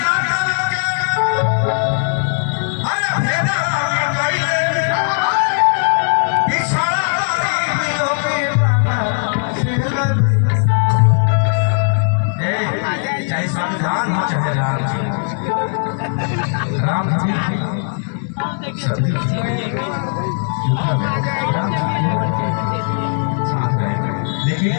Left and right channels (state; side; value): silent; right; digital silence